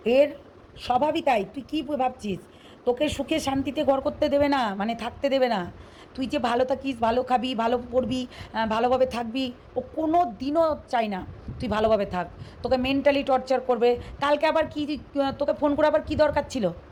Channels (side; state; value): both; identical; correlation 1.00